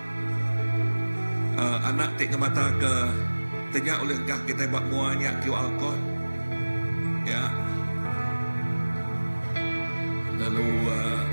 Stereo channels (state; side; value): inverted; both; correlation -1.00